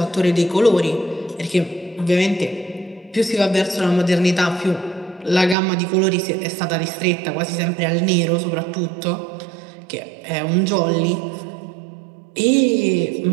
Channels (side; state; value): left; drops out; at 5.6 s